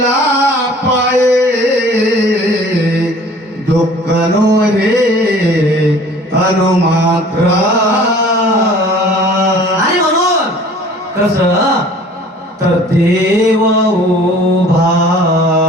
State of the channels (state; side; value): normal; both; correlation 0.49